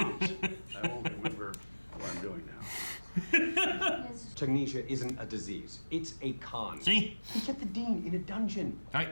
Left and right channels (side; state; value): both; inverted; correlation -1.00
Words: I won't remember what I'm doing now. Tagnesia isn't a disease. It's a con. See? He kept the dean in a dungeon.